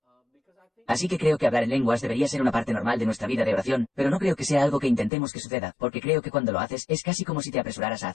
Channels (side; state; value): right; drops out; at 5.1 s